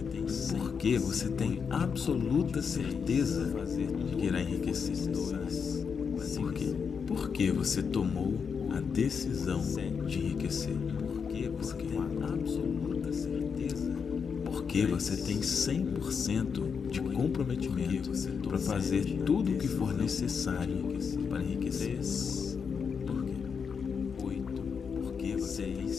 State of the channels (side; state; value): right; quieter; 6.2 dB